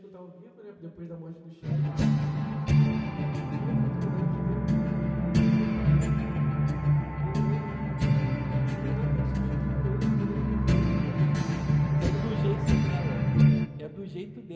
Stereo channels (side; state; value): both; identical; correlation 1.00